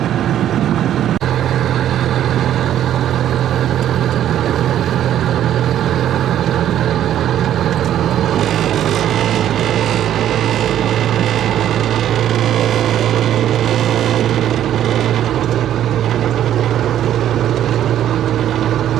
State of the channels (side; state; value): left; quieter; 11.2 dB